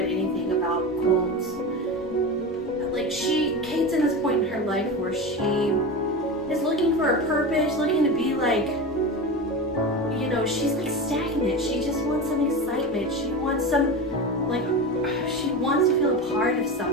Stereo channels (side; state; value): both; normal; correlation 0.24